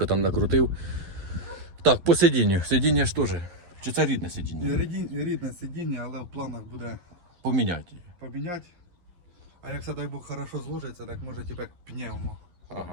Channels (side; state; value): left; late; 11 ms